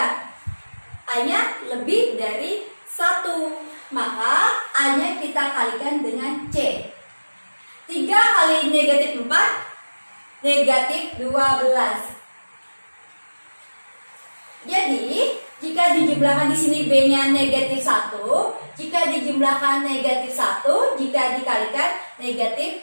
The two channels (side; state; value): both; inverted; correlation -1.00